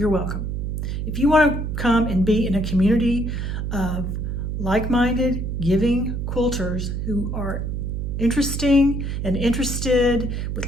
welcome. If you want to come and be in a community of like-minded, giving quilters who are interesting and interested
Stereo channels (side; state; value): right; noise; hum, 2 dB below the sound